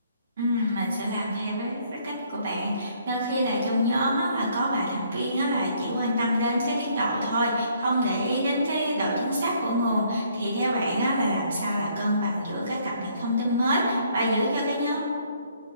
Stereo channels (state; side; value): inverted; both; correlation -0.66